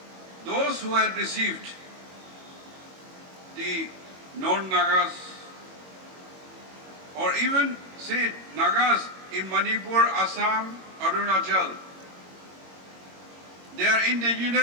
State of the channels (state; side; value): late; left; 21 ms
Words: those who had received the non-Nagas, or even say Nagas in Manipur, Assam, Arunachal, they are